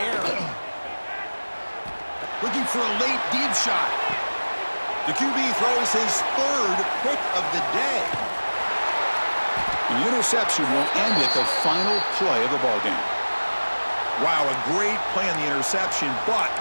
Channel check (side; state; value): both; inverted; correlation -1.00